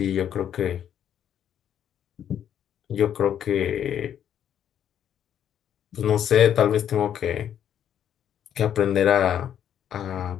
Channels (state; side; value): quieter; right; 9.7 dB